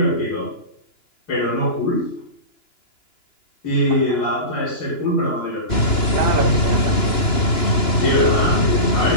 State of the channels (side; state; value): right; late; 2.9 ms